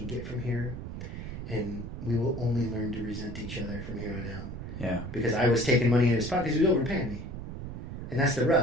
get from here. And we will only learn to resent each other from here on out. Yeah. Because I was taking money in his pocket because he was overpaying me. And that's the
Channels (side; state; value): right; noise; rumble, 8 dB below the sound